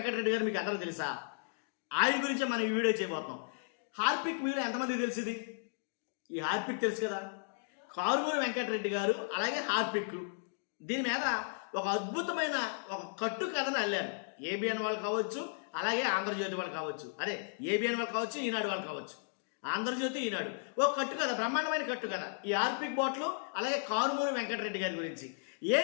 గారు మీకు అందరూ తెలుసా? ఆయన గురించి మనం ఈ వీడియో చేయబోతున్నాం. హార్పిక్ మీలో ఎంతమందికి తెలిసింది? ఈ హార్పిక్ తెలుసు కదా. కారుమూరి వెంకటరెడ్డి గారు అలాగే హార్పిక్ దీని మీద ఒక అద్భుతమైన ఒక కట్టు కథను అల్లారు. ఏబిఎన్ వాళ్ళు కావచ్చు, అలాగే ఆంధ్రజ్యోతి వాళ్ళు కావచ్చు, అదే ఏబిఎన్ వాళ్ళు కావచ్చు, ఈనాడు వాళ్ళు కావచ్చు. ఆంధ్రజ్యోతి, ఈనాడు ఒక కట్టు కథ, బ్రహ్మాండమైన కట్టు కథ. ఈ హార్పిక్ బాట్లు అలాగే కారుమూరి వెంకటరెడ్డి గారి గురించి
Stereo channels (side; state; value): right; silent; digital silence